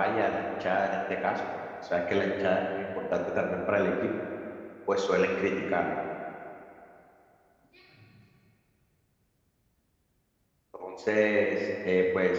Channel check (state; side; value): identical; both; correlation 1.00